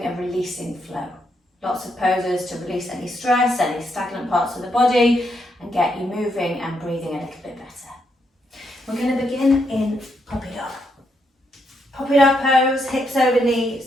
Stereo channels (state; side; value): normal; both; correlation 0.78